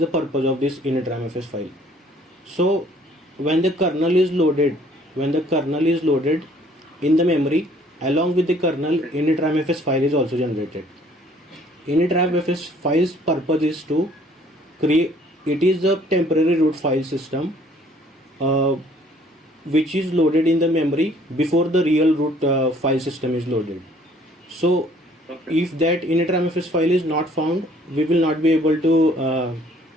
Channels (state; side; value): normal; both; correlation 0.59